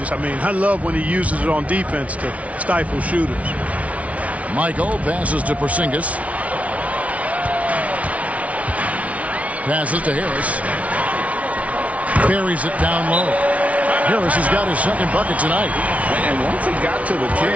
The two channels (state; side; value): late; left; 0.066 ms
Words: I mean, I love when he uses it on defense to stifle shooters. Michael passes to Porzingis. Passes to Harris. Buries it down low. Harris has got his second bucket tonight. And once he got to the